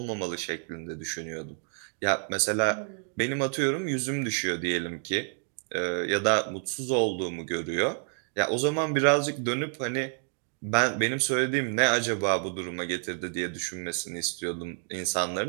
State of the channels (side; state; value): left; silent; 57 dB below the other